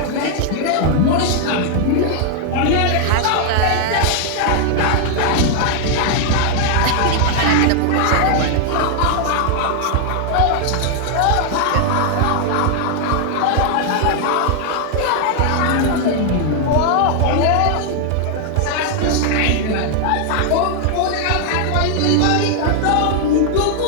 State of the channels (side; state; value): both; different; correlation 0.00